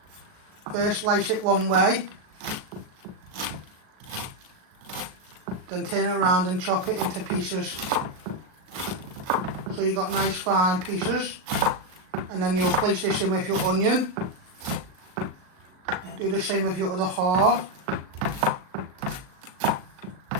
First slice it one way, then turn it around and chop it into pieces. So you've got nice fine pieces. And then you'll place this in with your onion. Do the same with your other half.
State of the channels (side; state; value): left; late; 38 ms